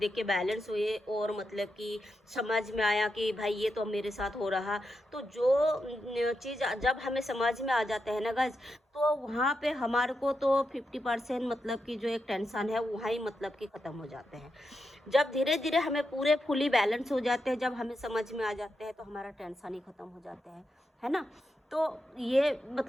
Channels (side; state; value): both; normal; correlation 0.86